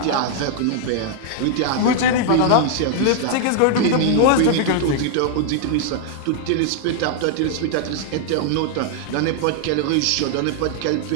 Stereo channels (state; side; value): different; both; correlation 0.00